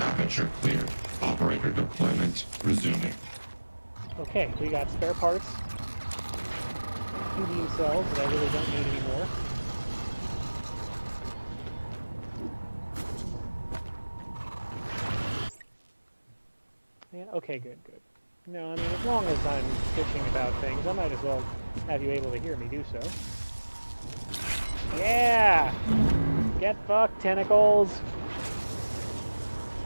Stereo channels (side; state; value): both; inverted; correlation -1.00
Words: cleared. Operator deployment resuming. Okay, we got spare parts. A few beam cells that I really don't need anymore. Yeah, okay, good. No, I mean, as long as I'm bitching about things, I might as well have you able to hear me do so. Yeah! Get fucked, tentacles!